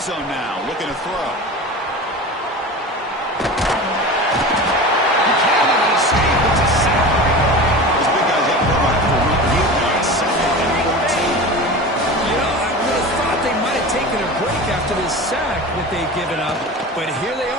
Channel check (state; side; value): normal; both; correlation 0.32